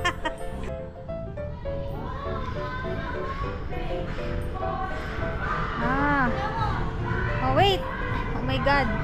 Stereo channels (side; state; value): both; identical; correlation 1.00